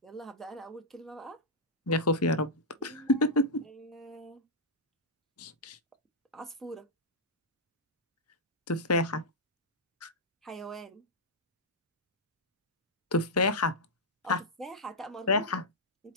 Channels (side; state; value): both; normal; correlation -0.07